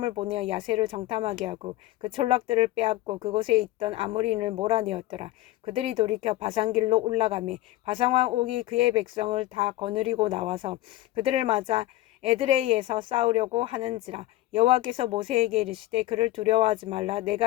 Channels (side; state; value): right; quieter; 16.3 dB